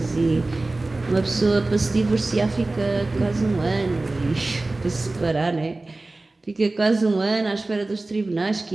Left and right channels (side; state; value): left; quieter; 3.0 dB